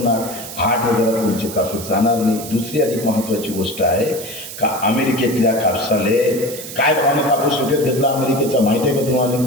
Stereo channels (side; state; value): right; noise; hiss, 11 dB below the sound